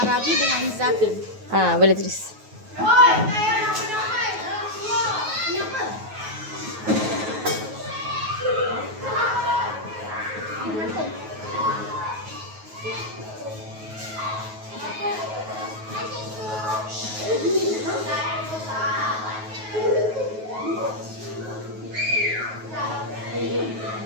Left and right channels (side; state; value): left; late; 9.3 ms